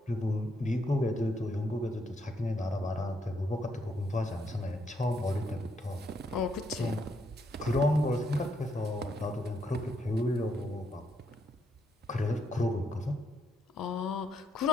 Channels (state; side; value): normal; both; correlation 0.76